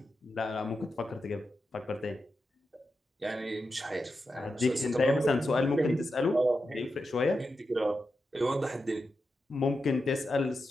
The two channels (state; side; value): normal; both; correlation 0.88